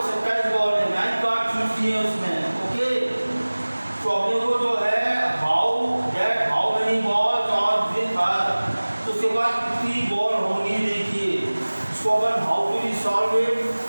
27 बॉल है, 9 कार्ड चूज किए उसने। ओके, तो अपने को जो है how many balls are with her, तो उसके पास कितनी बॉल होंगी। देखिए इसको अपन how to solve it.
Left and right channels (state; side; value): inverted; both; correlation -1.00